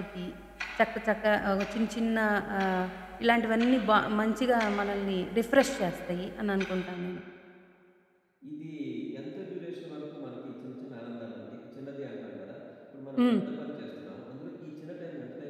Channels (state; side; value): identical; both; correlation 1.00